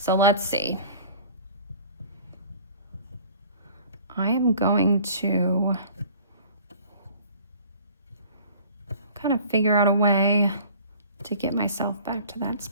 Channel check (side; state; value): both; inverted; correlation -0.48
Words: let's see. I am going to kind of figure out a way to get myself back to that